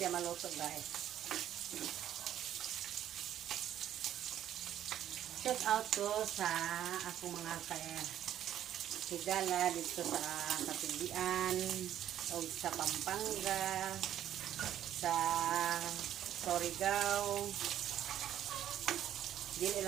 maluto, guys. Shout out to sa akong mga higala dito sa Kapilian o sa Pampanga, sa Surigao. Dili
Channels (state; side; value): quieter; left; 11.3 dB